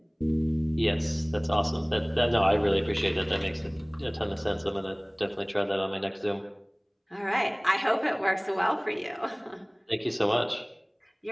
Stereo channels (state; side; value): identical; both; correlation 1.00